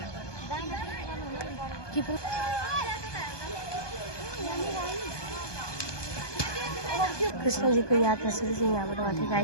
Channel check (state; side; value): late; right; 1.2 ms